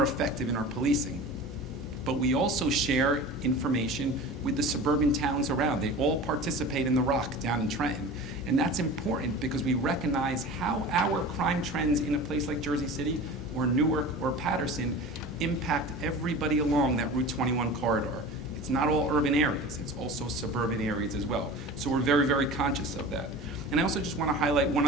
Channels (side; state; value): both; normal; correlation 0.35